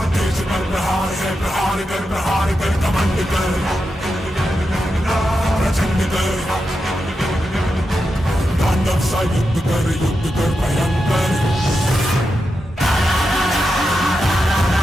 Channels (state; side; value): normal; both; correlation 0.88